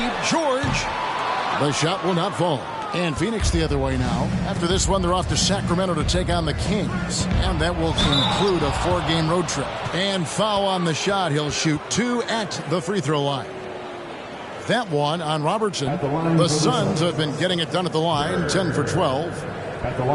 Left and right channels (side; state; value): both; identical; correlation 1.00